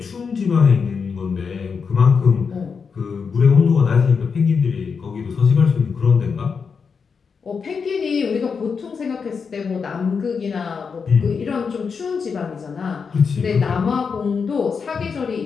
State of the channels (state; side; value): quieter; right; 5.7 dB